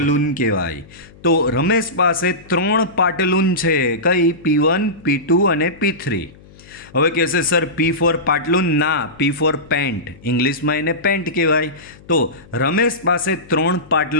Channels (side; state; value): left; noise; hum, 24 dB below the sound